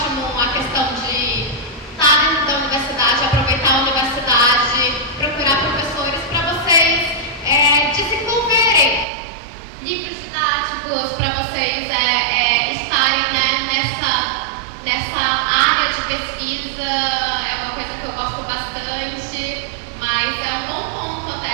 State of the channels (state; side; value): drops out; left; at 9.1 s